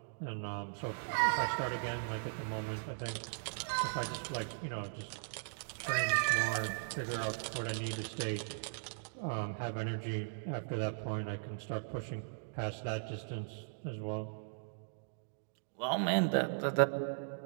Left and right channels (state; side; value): silent; left; digital silence